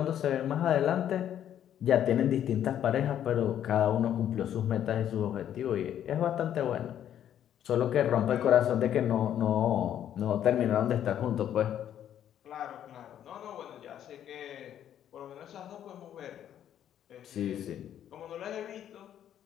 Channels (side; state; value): right; quieter; 10.4 dB